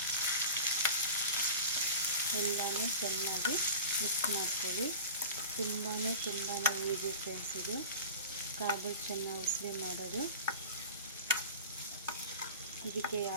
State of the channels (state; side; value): inverted; both; correlation -0.34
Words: ಎಲ್ಲನೂ ಚೆನ್ನಾಗಿ ಮಿಕ್ಸ್ ಮಾಡ್ಕೊಳ್ಳಿ. ತುಂಬಾ ಈಸಿ ಫ್ರೆಂಡ್ಸ್ ಇದು ಕಾಬೂಲ್ ಚನ್ನ ಉಸುಲಿ ಮಾಡೋದು. ಇದಕ್ಕೆ